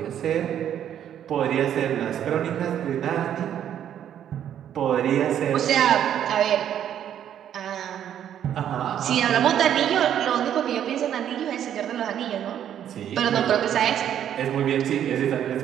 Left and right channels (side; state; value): left; quieter; 10.0 dB